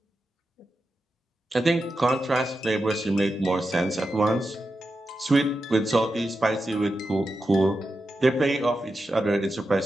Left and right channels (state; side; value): normal; both; correlation 0.90